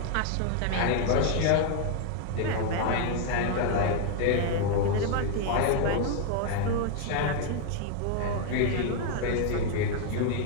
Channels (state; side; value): different; both; correlation 0.00